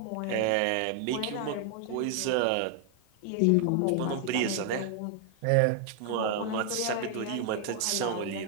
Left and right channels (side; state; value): both; different; correlation 0.00